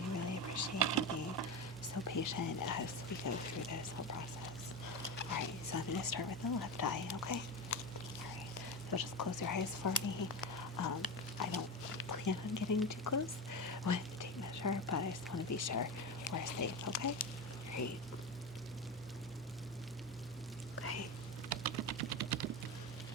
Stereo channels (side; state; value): both; normal; correlation 0.21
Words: really appreciate you being so patient as we go through this whole process. All right, so I'm going to start with the left eye, okay? All right, so just close your eyes for me. I don't plan on getting too close with the tape measure, but I just want to be sure we're safe, okay? Great. Okay.